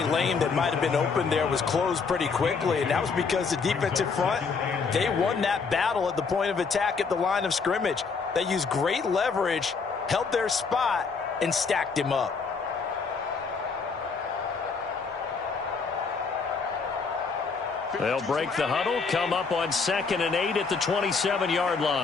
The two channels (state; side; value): quieter; right; 5.0 dB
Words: lane that might have been open there was closed pretty quickly, and that was because the defensive front, they won that battle at the point of attack at the line of scrimmage. They used great leverage, held their spot, and stacked him up. They'll break the huddle, come up on 2nd and 8 at the 27-yard